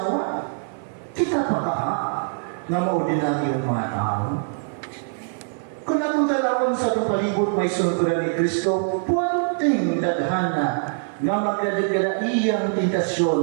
kita pa ka, na maordinaryong mga tao. Kung atong dalawang sa atong palibot may sunturan ni Kristo, puwanting daghana nga magkadagala iyang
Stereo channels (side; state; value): left; silent; 55 dB below the other